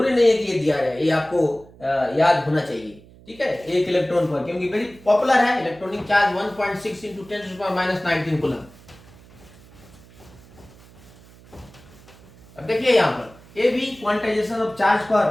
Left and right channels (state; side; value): noise; right; hum, 24 dB below the sound